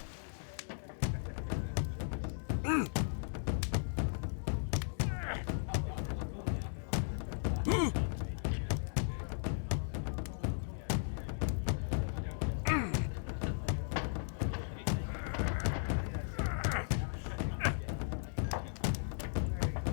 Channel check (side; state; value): right; silent; digital silence